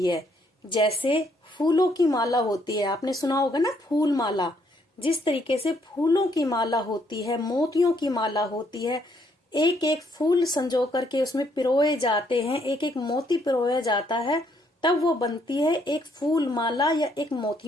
है? जैसे फूलों की माला होती है, आपने सुना होगा ना, फूल माला। जिस तरीके से फूलों की माला होती है, मोतियों की माला होती है, एक एक फूल संजो करके उसमें पिरोए जाते हैं, एक एक मोती पिरोया जाता है, तब वो बनती है एक फूल माला या एक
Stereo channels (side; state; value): both; normal; correlation 0.70